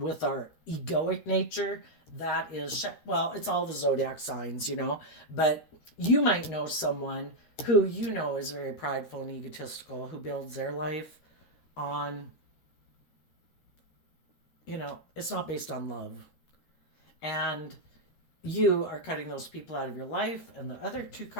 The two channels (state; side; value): late; right; 13 ms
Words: our egoic nature, that is, it's all the zodiac signs, but you might know someone who is very prideful and egotistical, who builds their life on, it's not based on love. And you are cutting those people out of your life. And the other two